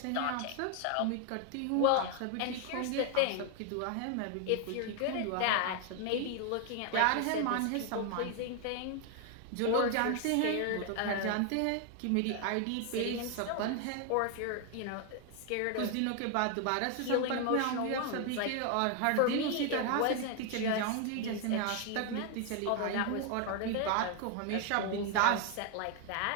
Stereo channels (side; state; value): both; different; correlation 0.01